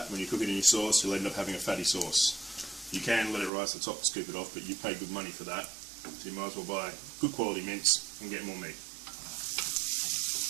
When you cook it in your sauce, you'll end up having a fatty sauce. You can let it rise to the top to scoop it off, but you pay good money for that. So you might as well buy good quality mince and get more meat.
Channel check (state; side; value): drops out; left; at 3.5 s